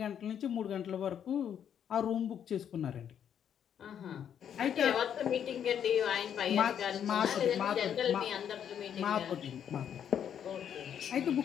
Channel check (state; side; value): quieter; right; 8.9 dB